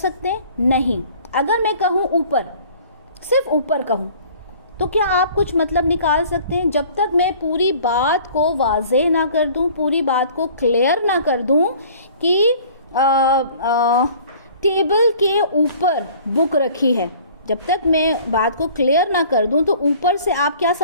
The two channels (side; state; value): both; inverted; correlation -0.50